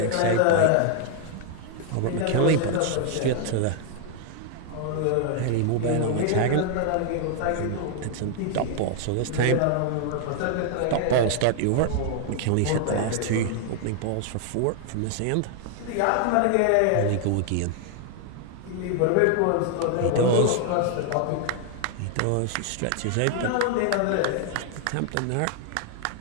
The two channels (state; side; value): different; both; correlation 0.00